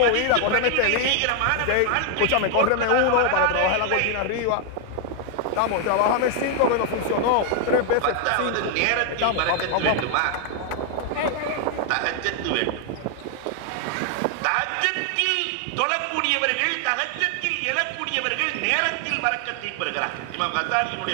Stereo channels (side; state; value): both; different; correlation 0.00